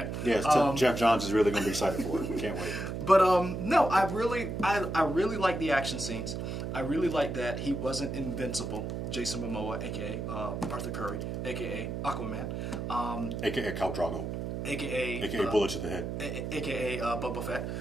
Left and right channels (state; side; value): noise; right; hum, 4 dB below the sound